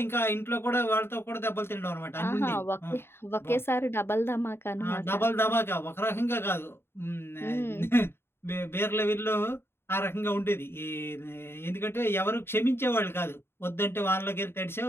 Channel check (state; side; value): late; right; 0.11 ms